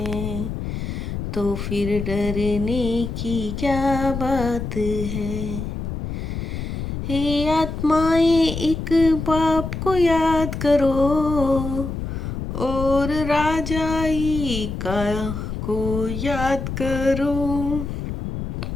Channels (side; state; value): left; noise; rumble, 5 dB below the sound